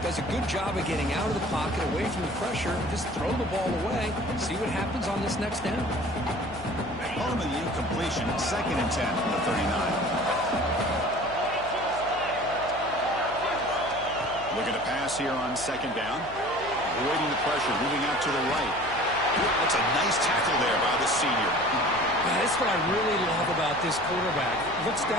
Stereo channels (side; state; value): left; noise; hum, 16 dB below the sound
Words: a good job of getting out of the pocket, away from the pressure, and just throw the ball away. See what happens on this next down. Home of the incompletion, 2nd and 10 from the 39. Looking to pass here on 2nd down. Avoiding the pressure, moving out to the right. That's a nice tackle there by the senior. Yeah, that's what I really love about this quarterback. Looks